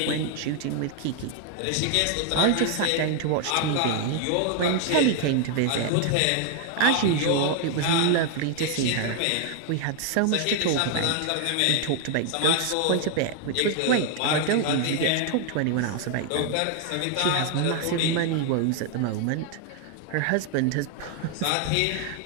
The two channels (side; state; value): both; different; correlation 0.00